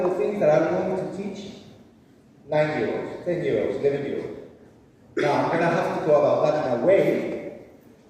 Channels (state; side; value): identical; both; correlation 1.00